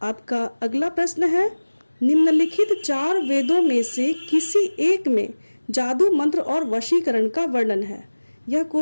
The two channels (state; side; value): inverted; both; correlation -1.00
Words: आपका अगला प्रश्न है, निम्नलिखित 4 वेदों में से किसी एक में जादू मंत्र और वशीकरण का वर्णन है। यह